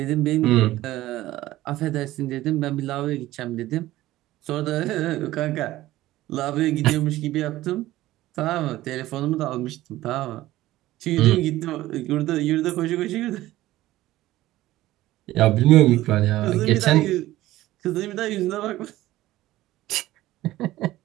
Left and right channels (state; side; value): quieter; left; 16.0 dB